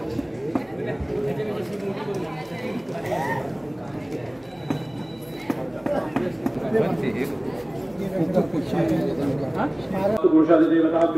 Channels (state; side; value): noise; right; hum, 29 dB below the sound